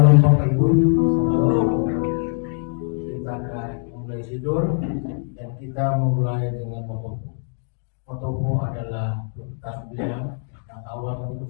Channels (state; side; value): silent; right; 62 dB below the other